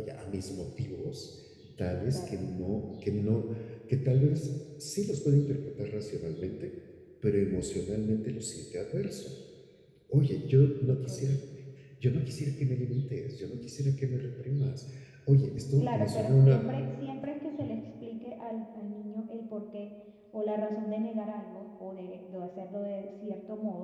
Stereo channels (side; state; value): both; identical; correlation 1.00